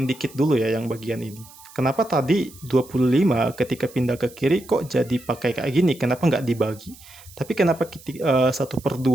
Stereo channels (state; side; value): noise; right; hiss, 21 dB below the sound